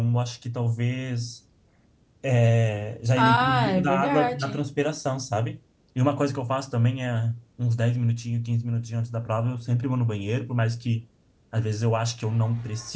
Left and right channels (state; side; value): identical; both; correlation 1.00